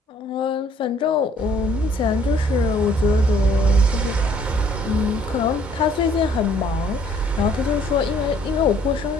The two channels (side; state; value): both; normal; correlation 0.60